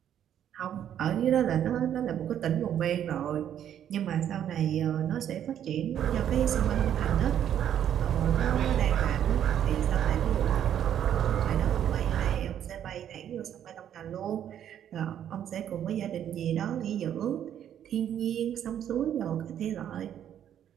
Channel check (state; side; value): quieter; left; 10.0 dB